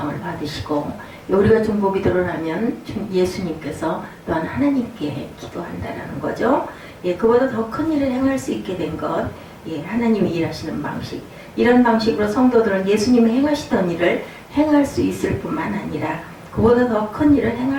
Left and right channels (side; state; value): both; identical; correlation 1.00